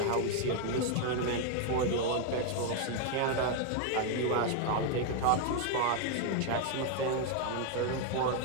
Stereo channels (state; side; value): different; both; correlation 0.00